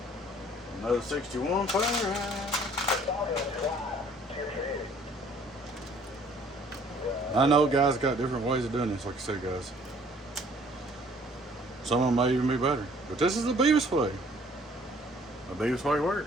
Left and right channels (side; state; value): both; normal; correlation 0.57